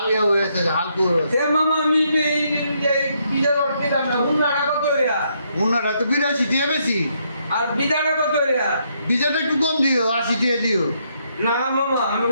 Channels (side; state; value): both; inverted; correlation -0.75